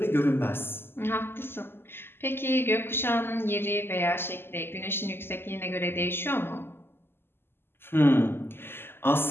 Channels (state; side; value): late; right; 0.11 ms